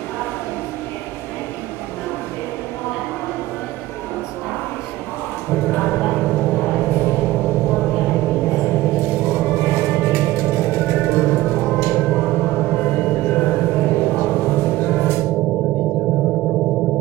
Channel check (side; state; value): left; quieter; 16.9 dB